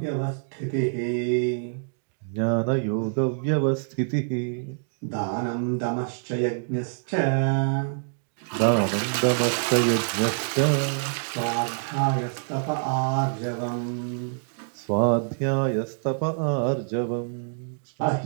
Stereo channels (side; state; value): left; silent; digital silence